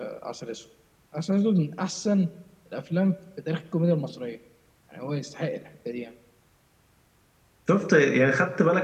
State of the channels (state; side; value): identical; both; correlation 1.00